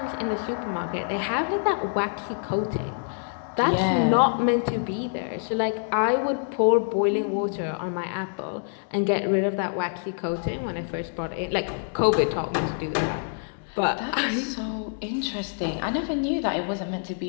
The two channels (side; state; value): right; silent; digital silence